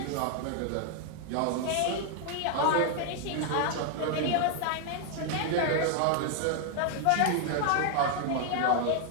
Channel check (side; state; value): both; different; correlation 0.00